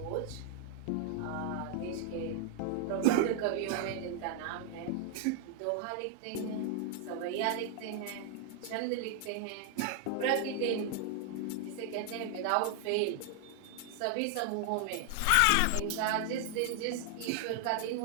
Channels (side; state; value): both; different; correlation 0.00